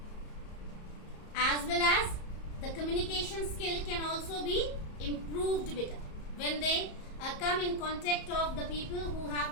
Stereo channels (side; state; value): right; late; 34 ms